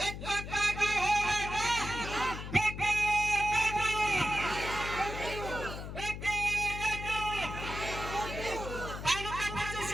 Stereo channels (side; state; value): left; noise; hum, 8 dB below the sound